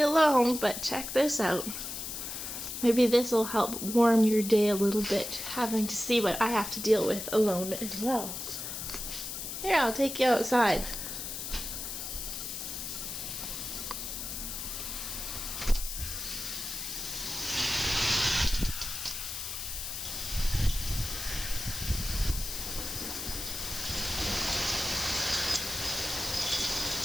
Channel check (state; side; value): noise; left; hiss, 6 dB below the sound